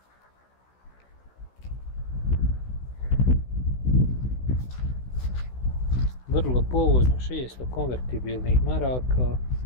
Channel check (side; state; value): right; late; 16 ms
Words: Vrlo povoljno, 600 konvertibilnih maraka.